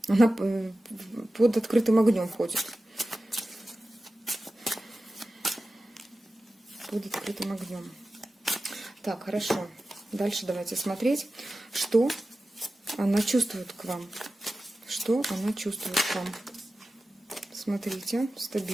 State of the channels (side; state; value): both; normal; correlation 0.94